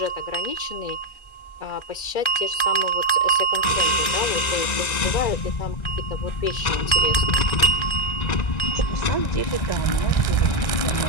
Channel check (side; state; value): right; late; 1.9 ms